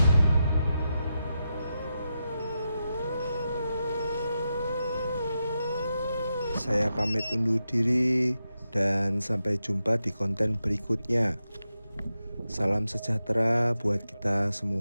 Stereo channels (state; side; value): inverted; both; correlation -0.88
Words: Saya pamit undur diri dan sampai jumpa di konten berikutnya. Salam sejahtera buat kita